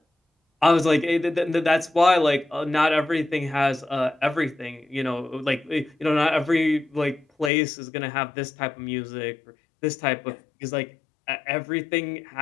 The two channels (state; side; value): drops out; right; at 7.5 s